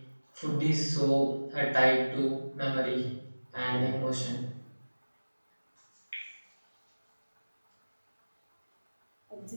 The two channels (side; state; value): both; inverted; correlation -1.00